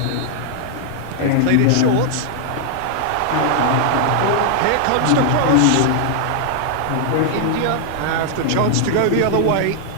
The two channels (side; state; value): both; different; correlation 0.00